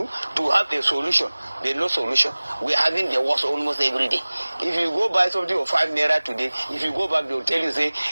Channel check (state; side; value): inverted; both; correlation -1.00